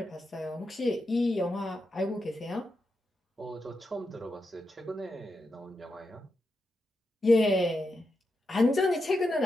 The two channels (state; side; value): normal; both; correlation 0.87